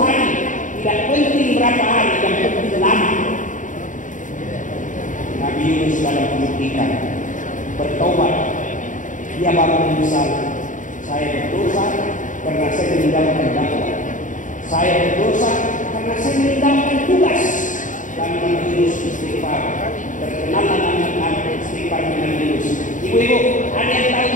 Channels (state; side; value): late; right; 0.37 ms